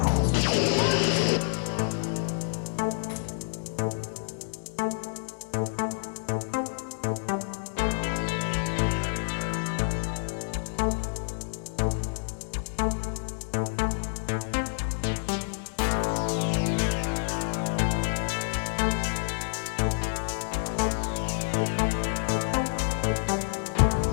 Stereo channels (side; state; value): right; silent; digital silence